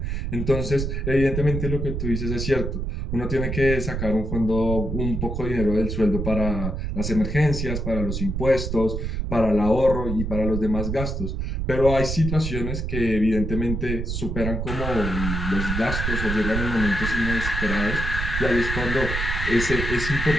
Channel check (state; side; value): noise; right; rumble, 3 dB below the sound